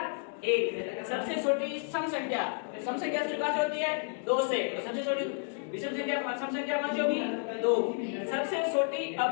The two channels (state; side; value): silent; right; 57 dB below the other